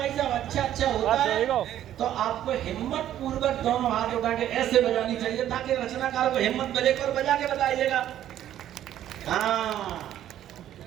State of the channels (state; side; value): quieter; left; 11.7 dB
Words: साहब। अच्छा होता है तो आपको हिम्मत पूर्वक दोनों हाथ उठा के ऐसे बजानी चाहिए, ताकि रचनाकार को हिम्मत मिले और बजा के बताइएगा। हाँ,